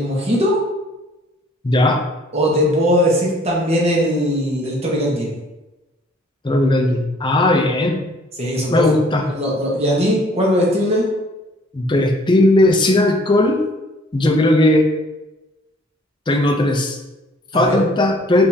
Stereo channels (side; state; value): both; normal; correlation 0.57